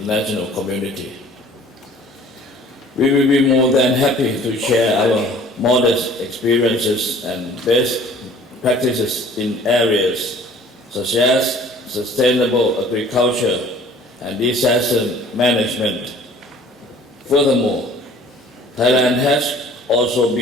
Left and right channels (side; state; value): both; normal; correlation 0.51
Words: community. We will be more than happy to share our modest experiences and best practices in areas such as sustainable agriculture and disaster management. Furthermore, Thailand has also